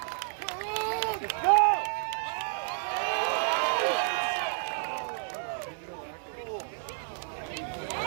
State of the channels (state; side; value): silent; left; 57 dB below the other